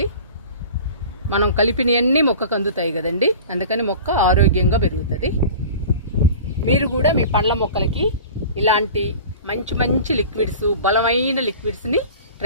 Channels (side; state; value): both; inverted; correlation -0.39